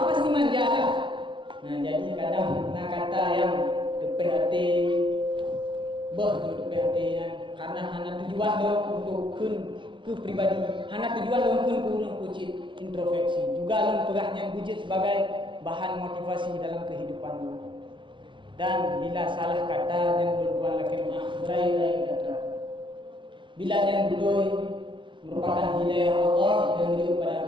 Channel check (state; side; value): late; left; 0.24 ms